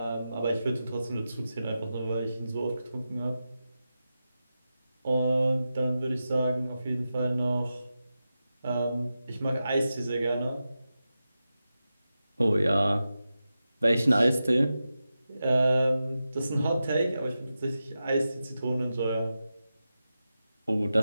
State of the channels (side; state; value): both; inverted; correlation -0.91